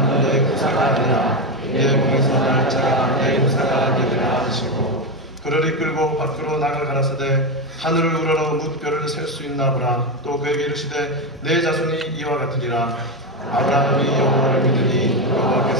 너의 후사가 아니라 내 몸에서 날 자가 내 후사가 되리라 하시고 그를 이끌고 밖으로 나가 가라사대 하늘을 우러러 뭇별을 셀 수 있나 보라. 또 그에게 이르시되 내 자손이 이와 같으리라. 아브라함이 여호와를 믿으니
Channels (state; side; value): normal; both; correlation 0.11